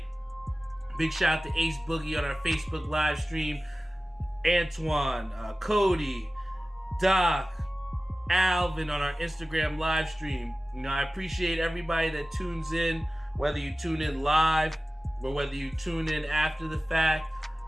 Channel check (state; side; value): normal; both; correlation 0.97